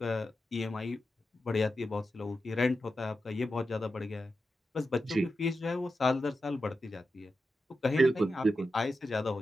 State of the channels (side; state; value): both; normal; correlation 0.90